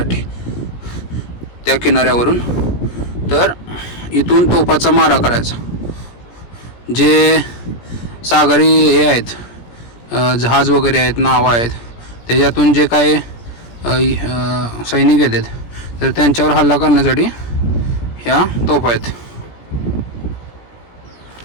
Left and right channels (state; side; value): late; right; 17 ms